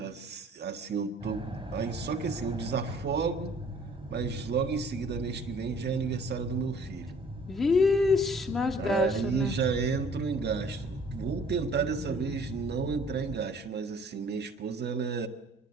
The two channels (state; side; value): normal; both; correlation 0.55